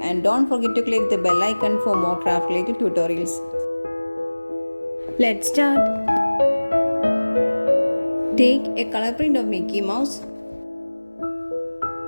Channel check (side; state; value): both; inverted; correlation -1.00